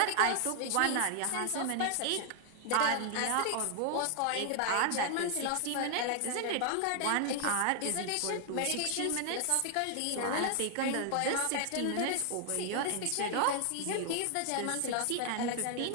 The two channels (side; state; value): both; different; correlation 0.00